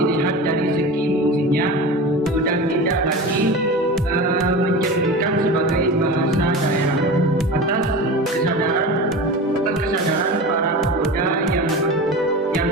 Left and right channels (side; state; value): both; normal; correlation 0.30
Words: dari segi fungsinya sudah tidak lagi mencerminkan sebagai bahasa daerah atas kesadaran para pemuda yang